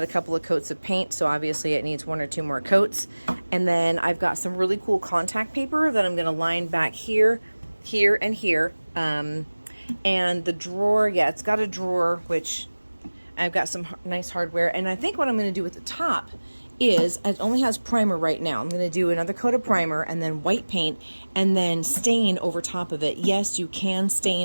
a couple of coats of paint, so obviously it needs one or two more coats. And then I've got some really cool contact paper that I'm going to line back here, here, and here. And the drawer, yeah, it's got a drawer, which I've got some nice hardware. And I think what I'm going to do at the top is, it only has primer right now. I'm going to do another coat of primer and then white paint and then stain over top of it. Yes, you can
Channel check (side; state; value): both; inverted; correlation -1.00